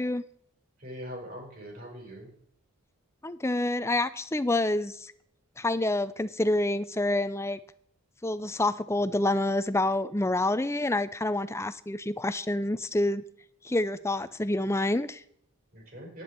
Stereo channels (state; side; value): normal; both; correlation 0.73